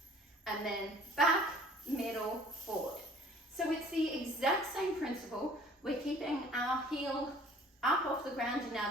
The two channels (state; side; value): normal; both; correlation 0.52